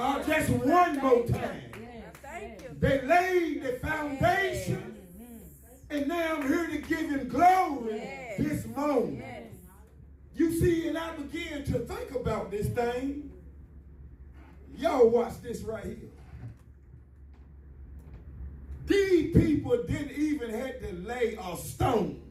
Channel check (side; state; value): both; identical; correlation 1.00